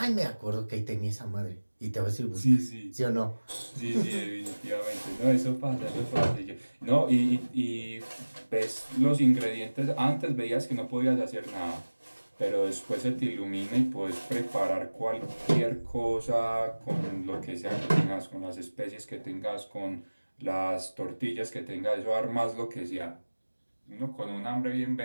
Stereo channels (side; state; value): both; inverted; correlation -1.00